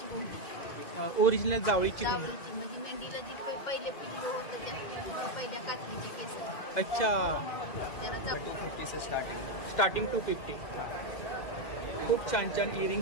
घोंगडी। ओरिजिनल जावळीची जावळीची म्हणजे मेंढीला जी पहिले पिल्लू होतं त्या पहिल्या काचणीचे केस। अच्छा, त्याला जावळी स्टार्टिंग 250। खूप छान छान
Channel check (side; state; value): right; late; 2.1 ms